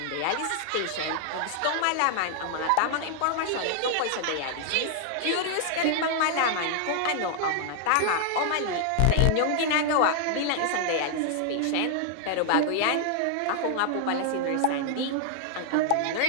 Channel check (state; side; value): different; both; correlation 0.00